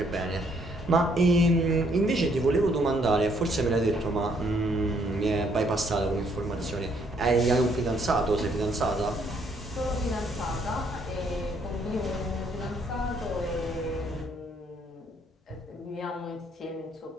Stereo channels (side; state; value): both; normal; correlation 0.68